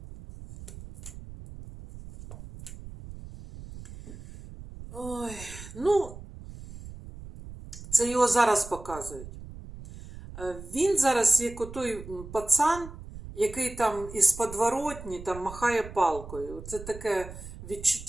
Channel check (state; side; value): noise; right; rumble, 14 dB below the sound